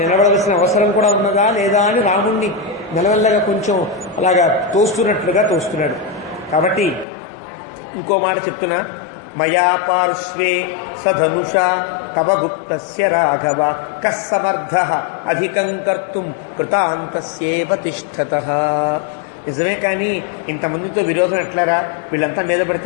అవసరం కూడా ఉన్నదా లేదా అని రాముణ్ణి మెల్లమెల్లగా కొంచెం అలాగా తోస్తున్నట్లుగా తోస్తున్నాడు. కాబట్టి ఇంకో మాట చెప్తున్నా, మయా పార్శ్వే సధనుషా తవ గుప్తస్య రాఘవ కస్సమర్థః అధికం కర్తుం కృతాంతస్యేవ తిష్ఠతః. నిజమే, కానీ ఇంతమందితో విరోధం ఎట్లారా, వీళ్ళంతా మీద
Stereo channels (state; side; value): drops out; right; at 7.1 s